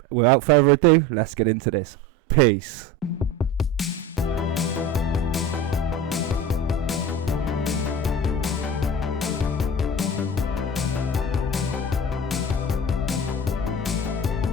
Without further ado, let's get into this. Peace.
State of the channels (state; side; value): normal; both; correlation 0.32